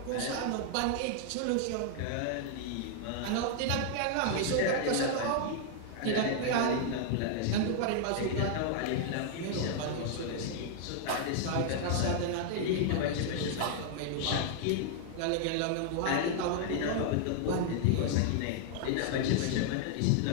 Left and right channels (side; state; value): both; different; correlation 0.00